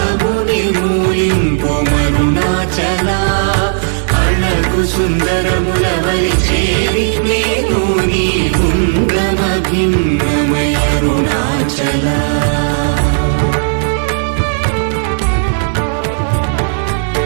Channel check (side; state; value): left; silent; 71 dB below the other